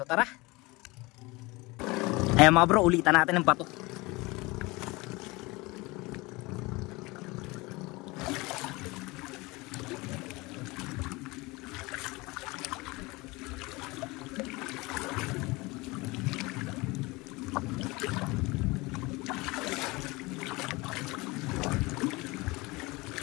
tara. Ayan mga bro, ulitan natin ng bato.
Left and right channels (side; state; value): right; quieter; 23.5 dB